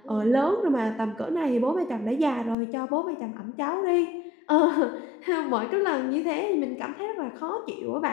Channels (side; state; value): right; drops out; at 2.6 s